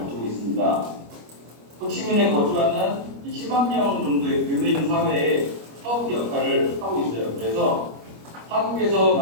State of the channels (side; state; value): left; late; 25 ms